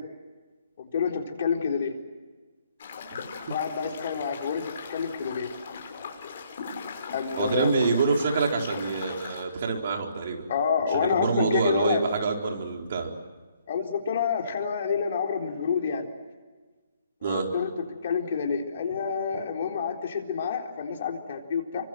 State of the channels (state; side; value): inverted; both; correlation -0.66